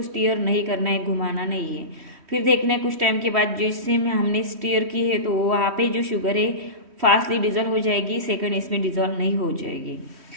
स्टीयर नहीं करना है, घुमाना नहीं है। फिर देखना है कुछ टाइम के बाद जिससे हमने स्टीयर की है तो वहाँ पे जो शुगर है फास्टली डिजोल्व हो जाएगी, सेकंड इसमें डिजोल्व नहीं हो जाएगी।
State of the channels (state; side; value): late; left; 3.1 ms